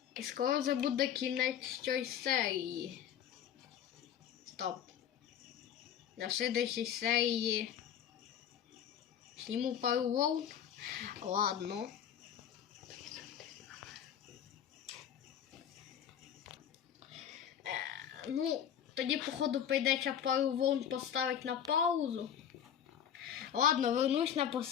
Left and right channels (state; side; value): quieter; right; 9.3 dB